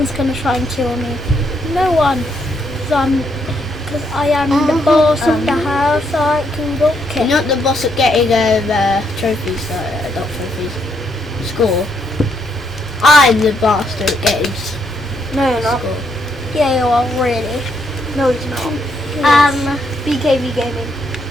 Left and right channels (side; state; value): both; normal; correlation 0.76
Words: gonna try and kill me. No one. Because I am the boss of the house, so I can go You're kill. not the boss at getting trophies, not trophies, score. I'm the bastard at getting No, you're not. score. Yeah, you are really. No, he's not. BKV Gaming.